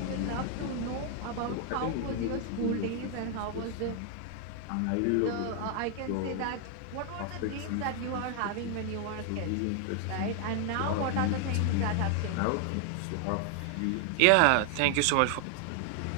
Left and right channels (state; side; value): different; both; correlation 0.00